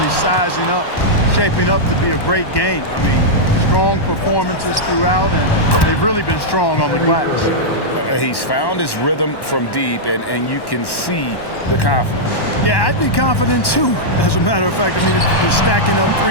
sizing up, shaping up to be a great game. I mean, strong performances throughout, and they've really been strong on the glass. He's found his rhythm from deep, and you can see the confidence. Yeah, I'd be confident too, as a matter of fact. I mean, if you're stacking up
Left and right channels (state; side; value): late; right; 1.1 ms